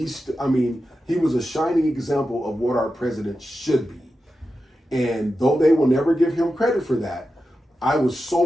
was a shining example of what our president should be. And though they will never give him credit for that, I was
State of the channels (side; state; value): both; normal; correlation 0.91